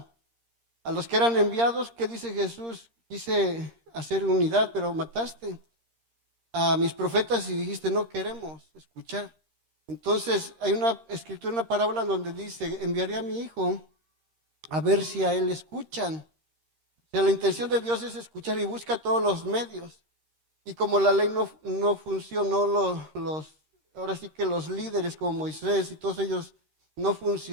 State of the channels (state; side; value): late; left; 13 ms